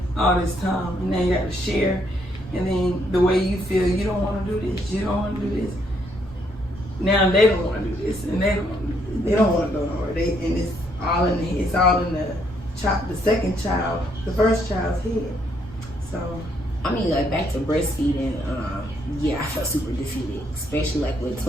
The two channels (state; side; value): normal; both; correlation 0.72